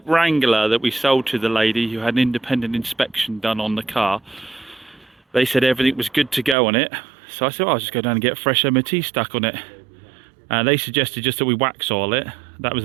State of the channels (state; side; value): drops out; left; at 6.6 s